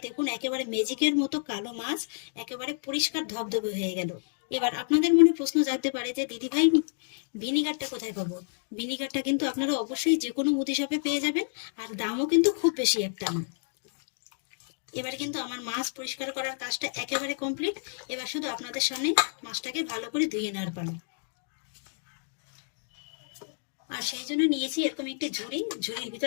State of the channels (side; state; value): right; silent; digital silence